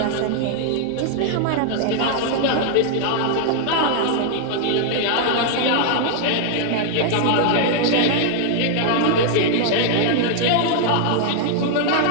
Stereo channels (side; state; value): both; different; correlation 0.00